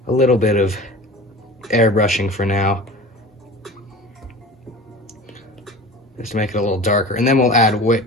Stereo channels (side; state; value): both; normal; correlation 0.37